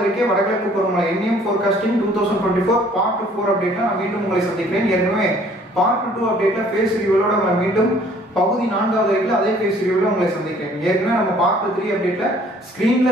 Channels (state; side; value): normal; both; correlation 0.57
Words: அறிக்கை வடகிழக்கு பருவமழை என்எம் ஃபோர்காஸ்டிங் 2024 பார்ட் 4 அப்டேட்ல நான் மீண்டும் உங்களை சந்திக்கிறேன். ஏற்கனவே பார்ட் 2 அப்டேட்ல ஃபேஸ் ரிவ்யூவோட நம்ம மீண்டும் பகுதி 4வது அறிக்கையில் அதே ஃபேஸ் ரிவ்யூல உங்களை சந்திக்கிறேன். ஏற்கனவே நம்ம பார்ட் 3 அப்டேட்ல